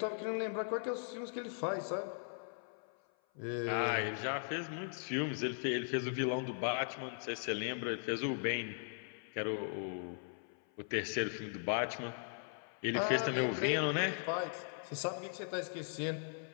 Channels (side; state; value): right; silent; 52 dB below the other